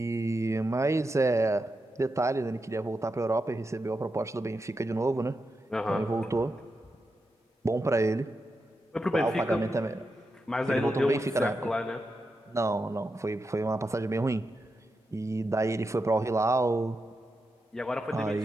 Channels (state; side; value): normal; both; correlation 0.87